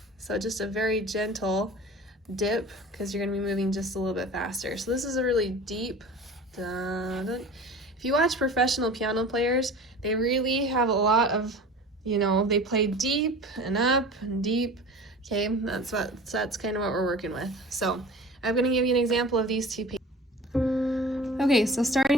so just a very gentle dip, because you're gonna be moving just a little bit faster. So this is a really deep dun, dun. If you watch professional piano players, they really have a lot of, you know, they play deep and up and deep. Okay, that's kind of what we're working with. So I'm going to give you an example of these two pages. Okay, so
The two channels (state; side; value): normal; both; correlation 0.39